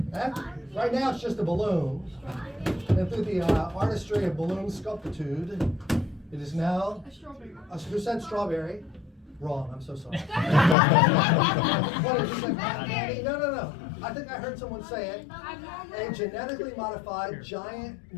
Right now it's just a balloon. And through the artistry of balloon sculptitude, it is now. A strawberry. Who said strawberry? Wrong, I'm so sorry. What did you say? No. I think I heard someone say it. A genetically modified giant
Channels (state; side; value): drops out; right; at 10.8 s